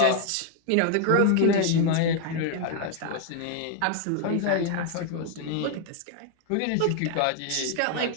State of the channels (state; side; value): different; both; correlation 0.00